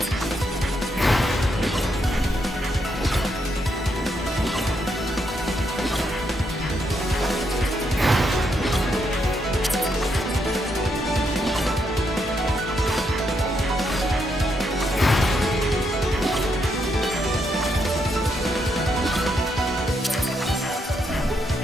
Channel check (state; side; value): normal; both; correlation 0.78